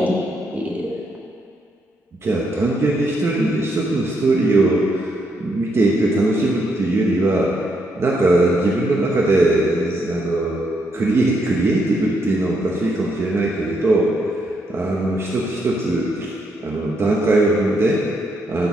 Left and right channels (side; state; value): both; normal; correlation 0.77